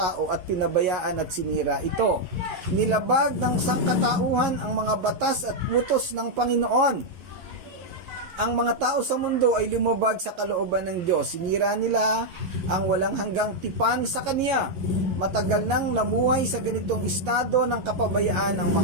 at pinabayaan at sinira ito. Nilabag ng sangkatauhan ang mga batas at utos ng Panginoon. Ang mga tao sa mundo ay lumabag sa kalooban ng Diyos. Sinira nila ang walang hanggang tipan sa Kanya. Matagal nang namuhay sa ganitong estado ng kapabayaan ang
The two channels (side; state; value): left; late; 11 ms